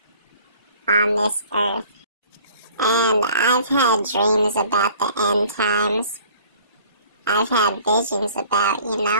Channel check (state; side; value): inverted; both; correlation -0.51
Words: on this earth. And I've had dreams about the end times. I've had visions about,